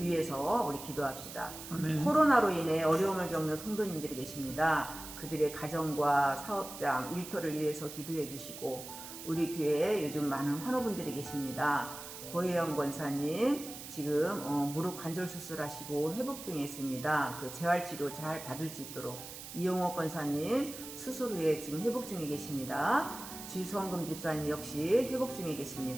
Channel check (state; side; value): noise; right; hiss, 11 dB below the sound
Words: 위해서 우리 기도합시다. 아멘. 코로나로 인해 어려움을 겪는 성도님들이 계십니다. 그들의 가정과 사업장, 일터를 위해서 기도해 주시고 우리 교회에 요즘 많은 환우분들이 계십니다. 고혜영 권사님 지금 무릎 관절 수술하시고 회복 중에 있습니다. 그 재활치료 잘 받을 수 있도록 이용호 권사님 수술 후에 지금 회복 중에 계십니다. 지성금 집사님 역시 회복 중에